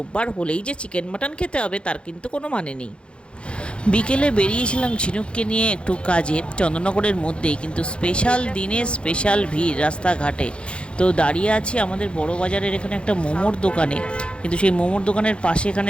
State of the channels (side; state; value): right; late; 0.057 ms